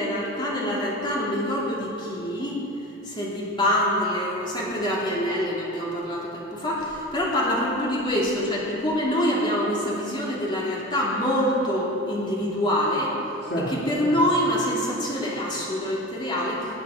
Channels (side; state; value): both; normal; correlation 0.32